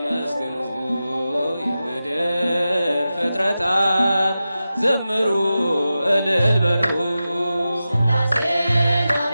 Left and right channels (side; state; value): both; inverted; correlation -0.93